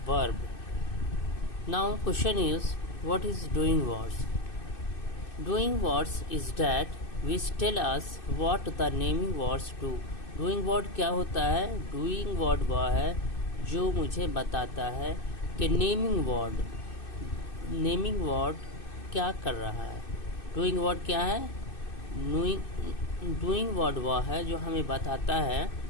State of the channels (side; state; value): right; late; 2.6 ms